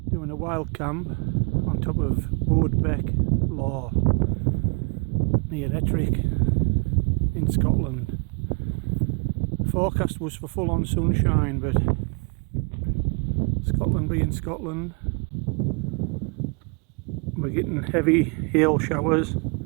Doing a wild camp on top of Bodesbeck Law near Ettrick in Scotland. The forecast was for full on sunshine, but Scotland being Scotland, we're getting heavy hail showers,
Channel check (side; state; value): left; quieter; 34.8 dB